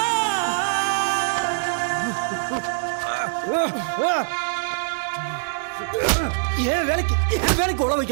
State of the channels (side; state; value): left; silent; 63 dB below the other